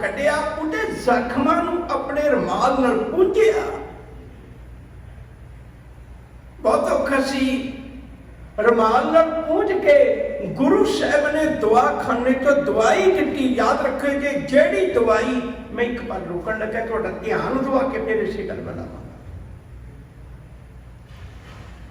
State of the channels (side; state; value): both; identical; correlation 1.00